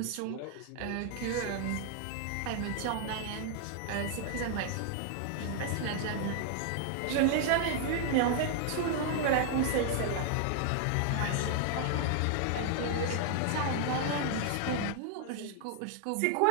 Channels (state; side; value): different; both; correlation 0.00